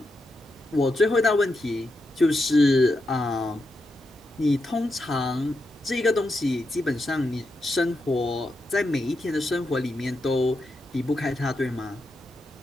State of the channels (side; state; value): both; normal; correlation 0.86